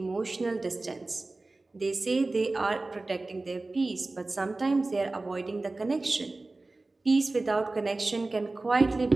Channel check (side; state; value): left; quieter; 3.2 dB